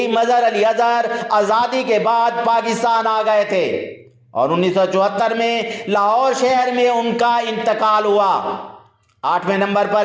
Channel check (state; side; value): identical; both; correlation 1.00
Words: مظہر علی اظہر آزادی کے بعد پاکستان آ گئے تھے اور 1974 میں لاہور شہر میں ان کا انتقال ہوا۔ 8ویں نمبر پر